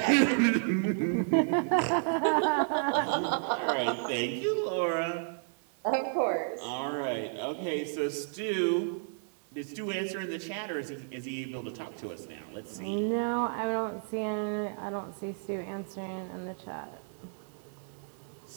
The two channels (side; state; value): left; silent; digital silence